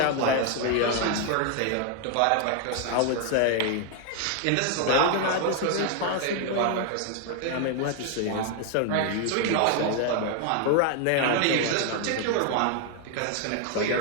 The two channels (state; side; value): different; both; correlation 0.00